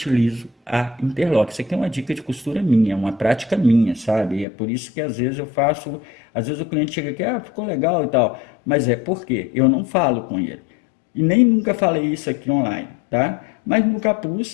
a interlock. Isso aqui é uma dica de costura minha, uma prática minha, sabe? É por isso que às vezes eu faço, às vezes o cliente chega aqui, ficou legal e tal, mas é porque eu não falo com ele. E nem nunca falei isso aqui online, tá? Mas no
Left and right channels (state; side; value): drops out; right; at 4.5 s